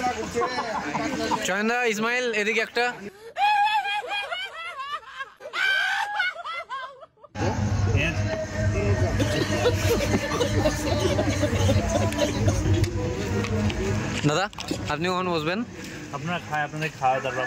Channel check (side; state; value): both; identical; correlation 1.00